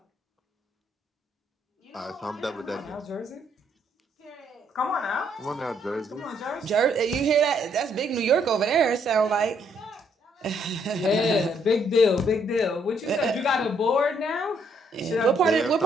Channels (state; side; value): normal; both; correlation 0.70